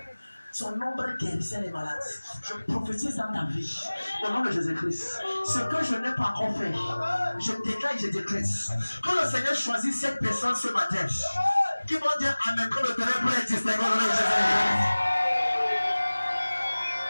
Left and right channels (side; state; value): both; inverted; correlation -1.00